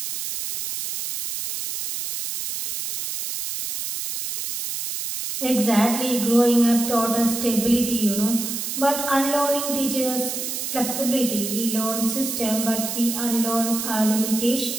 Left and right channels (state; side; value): noise; right; hiss, 4 dB below the sound